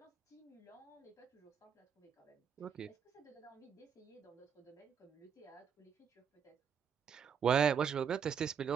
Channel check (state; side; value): quieter; left; 7.3 dB